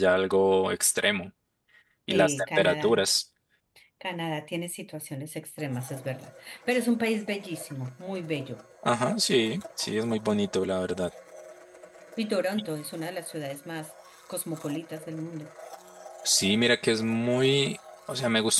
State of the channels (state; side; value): identical; both; correlation 1.00